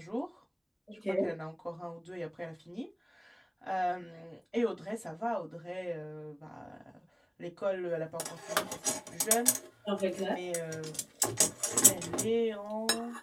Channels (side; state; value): both; identical; correlation 1.00